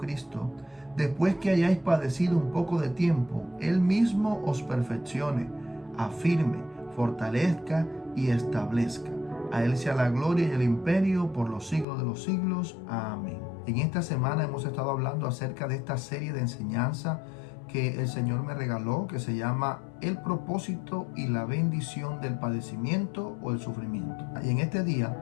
después que hayáis padecido un poco de tiempo, Él mismo os perfeccione, afirme, fortalezca y establezca. A Él sea la gloria y el imperio por los siglos de los siglos. Amén. En esta semana hemos estado hablando acerca de esta serie de enseñanza que el Señor me regaló, que se llama El propósito y la bendición del padecimiento o el sufrimiento. Y en este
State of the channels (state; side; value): drops out; right; at 11.9 s